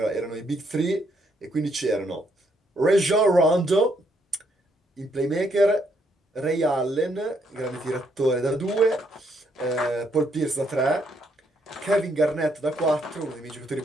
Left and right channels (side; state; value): both; normal; correlation 0.73